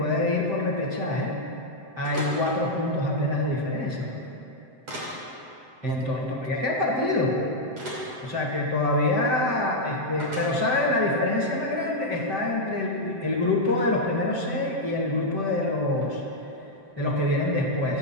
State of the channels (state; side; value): late; left; 7.7 ms